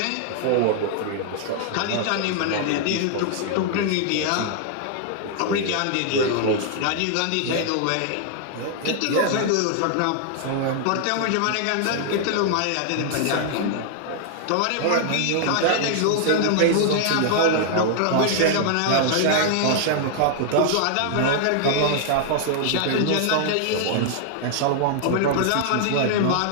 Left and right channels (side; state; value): both; different; correlation 0.00